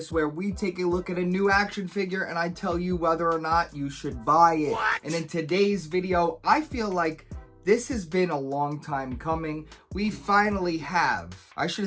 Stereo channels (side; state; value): both; identical; correlation 1.00